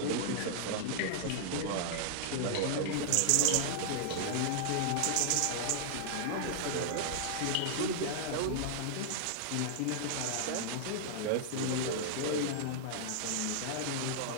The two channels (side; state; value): both; different; correlation -0.01